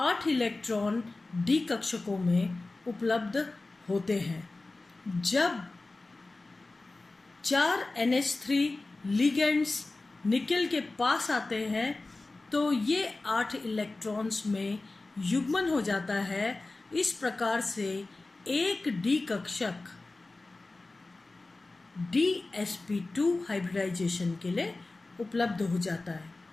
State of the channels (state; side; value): quieter; right; 3.2 dB